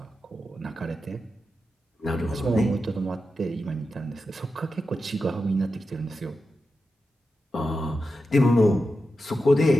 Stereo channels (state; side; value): normal; both; correlation 0.90